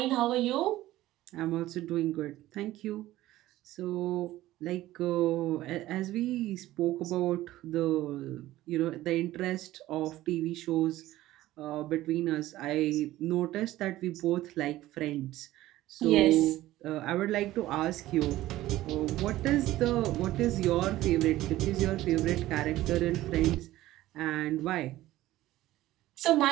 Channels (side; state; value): left; quieter; 15.7 dB